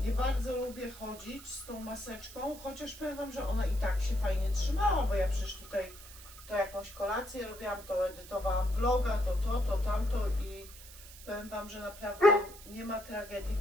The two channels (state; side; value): noise; right; hiss, 17 dB below the sound